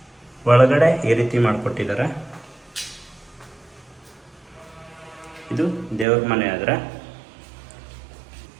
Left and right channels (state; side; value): drops out; left; at 6.1 s